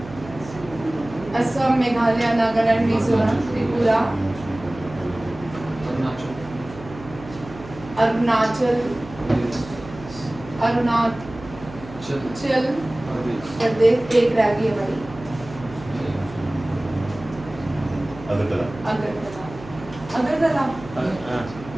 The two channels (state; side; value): noise; right; hum, 16 dB below the sound